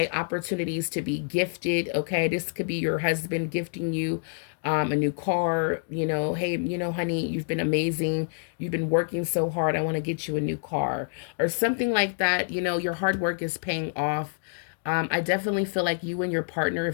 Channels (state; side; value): silent; right; digital silence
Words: opportunities to be gifted. Okay, this could be your husband gifting you a new car. Hey, honey, you've been amazing, you've been working so hard, I want to get you a new car, or something like that. Your hard work is paying off. I definitely feel like you and your partner,